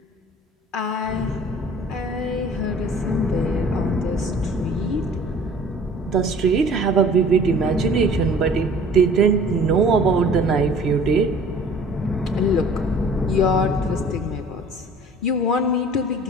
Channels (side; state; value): both; normal; correlation 0.49